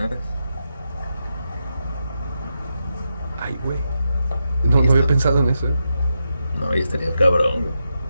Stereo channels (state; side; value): inverted; both; correlation -0.86